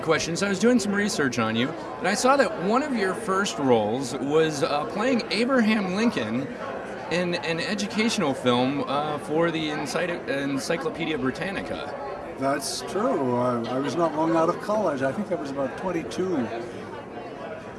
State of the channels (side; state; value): both; identical; correlation 1.00